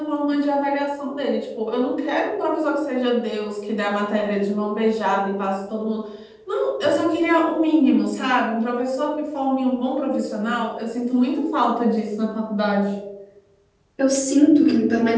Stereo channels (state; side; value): identical; both; correlation 1.00